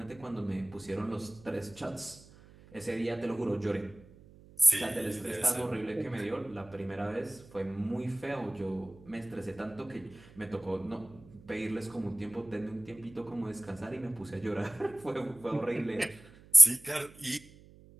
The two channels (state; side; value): noise; right; hum, 22 dB below the sound